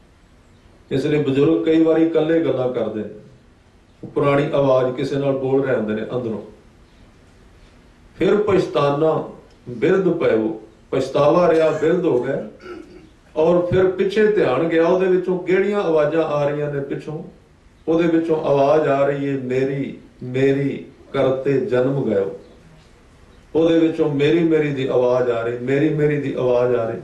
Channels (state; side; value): identical; both; correlation 1.00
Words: ਇਸ ਲਈ ਬਜ਼ੁਰਗ ਕਈ ਵਾਰੀ ਇਕੱਲੇ ਗੱਲਾਂ ਕਰਦੇ ਨੇ, ਪੁਰਾਣੀ ਆਵਾਜ਼ ਕਿਸੇ ਨਾਲ ਬੋਲ ਰਹੇ ਹੁੰਦੇ ਨੇ ਅੰਦਰੋਂ। ਫਿਰ ਪਛਤਾਨਾ ਬਿਰਧ ਪਇਓ, ਪਛਤਾਵਾ ਰਿਹਾ, ਬਿਰਧ ਹੋ ਗਏ। ਔਰ ਫਿਰ ਪਿੱਛੇ ਧਿਆਨ ਗਿਆ, ਉਹਦੇ ਵਿੱਚੋਂ ਕਿਹੜੀਆਂ ਆਵਾਜ਼ਾਂ ਆ ਰਹੀਆਂ ਨੇ ਪਿੱਛੋਂ। ਉਹਦੇ ਵਿੱਚੋਂ ਆਵਾਜ਼ ਆ ਰਹੀ ਹੈ ਮੇਰੀ ਮੇਰੀ ਕਰਤੇ ਜਨਮ ਗਇਓ। ਉਹਦੇ ਵਿੱਚੋਂ ਮੇਰੀ ਮੇਰੀ ਦੀ ਆਵਾਜ਼ ਆ ਰਹੀ, ਮੇਰੀ ਮੇਰੀ ਦੀ ਆਵਾਜ਼ ਆ ਰਹੀ।